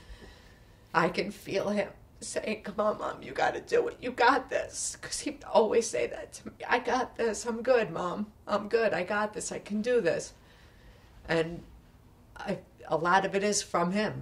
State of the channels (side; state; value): both; identical; correlation 1.00